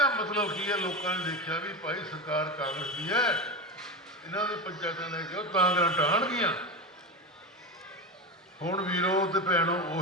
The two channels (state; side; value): normal; both; correlation 0.19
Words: ਮਤਲਬ ਕੀ ਹੈ? ਲੋਕਾਂ ਨੇ ਦੇਖਿਆ ਵੀ ਭਾਈ ਸਰਕਾਰ ਕਾਂਗਰਸ ਦੀ ਹੈ, ਇਹਨਾਂ ਦੇ ਪੰਚਾਇਤਾਂ ਲੈ ਕੇ ਉਹ ਕਾਂਗਰਸ ਢਾਣਗੀਆਂ। ਹੁਣ ਵੀਰੋ ਤੇ ਭੈਣੋ